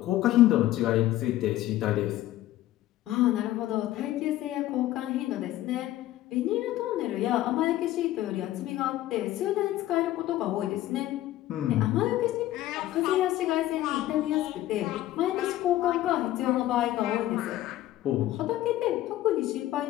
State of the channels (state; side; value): quieter; right; 14.7 dB